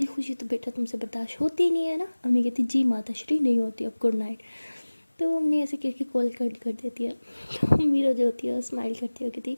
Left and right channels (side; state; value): both; inverted; correlation -1.00